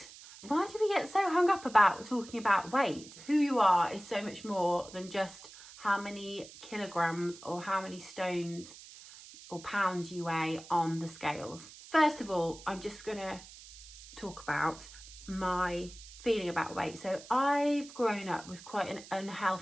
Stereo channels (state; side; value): noise; right; hiss, 17 dB below the sound